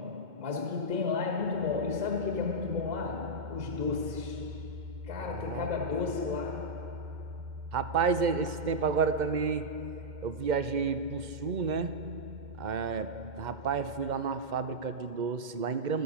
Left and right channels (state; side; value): late; left; 2.1 ms